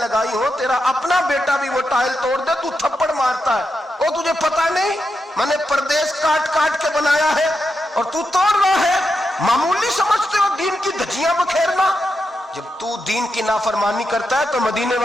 ہو تیرا اپنا بیٹا بھی وہ ٹائل توڑ دے تو تھپڑ مارتا ہے, وہ تجھے پتا نہیں میں نے پردیس کاٹ کاٹ کے بنایا ہے اور تو توڑ رہا ہے. معمولی سمجھتے ہو دین کی دھجیاں بکھیرنا؟ جب تو دین کی نافرمانی کرتا ہے تو مدینے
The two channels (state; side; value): normal; both; correlation 0.86